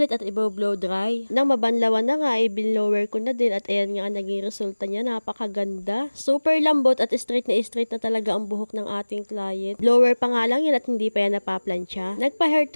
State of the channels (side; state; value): both; inverted; correlation -1.00